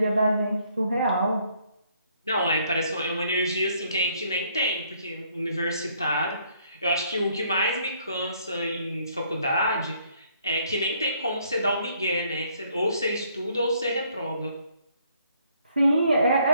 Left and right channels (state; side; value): inverted; both; correlation -0.67